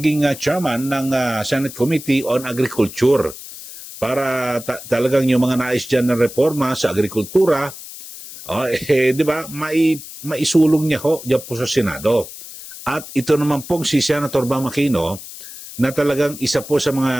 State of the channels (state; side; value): noise; left; hiss, 14 dB below the sound